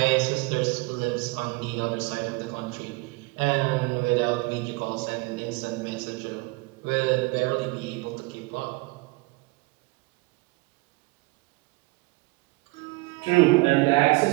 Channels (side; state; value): left; quieter; 24.1 dB